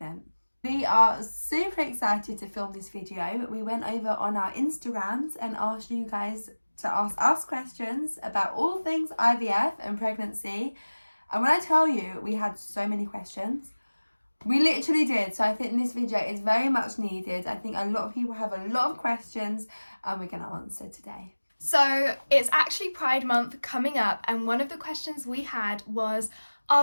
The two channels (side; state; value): both; inverted; correlation -1.00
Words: We are super excited to film this video. We went over on our Instagrams and asked you guys to ask us questions about all things IVF and pregnancy. And when I tell you, we had so many questions. We literally did. So I think this video is very much needed. I think a lot of people have a lot of questions and we're going to answer today. So it's actually Pride Month coming up, and one of the questions we had was,